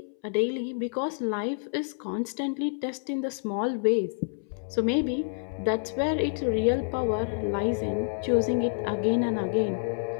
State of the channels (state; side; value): silent; right; 59 dB below the other